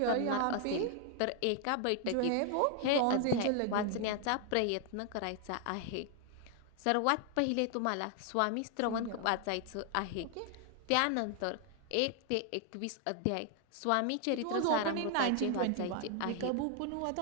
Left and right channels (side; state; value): both; different; correlation 0.00